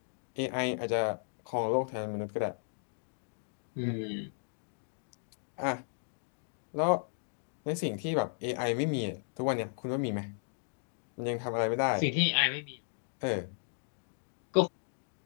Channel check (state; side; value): silent; right; digital silence